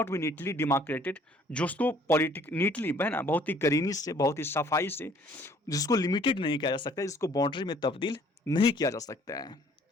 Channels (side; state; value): both; normal; correlation 0.58